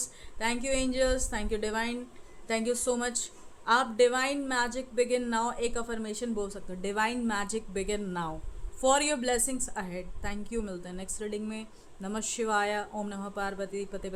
thank you angels, thank you divine, thank you so much. आप डिवाइन मैजिक बिगिन नाउ एक अफर्मेशन बोल सकते हो, divine magic begin now for your blessings ahead. Thank you, मिलते हैं नेक्स्ट रीडिंग में। नमः शिवाय, ओम नमः पार्वती पते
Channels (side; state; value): both; identical; correlation 1.00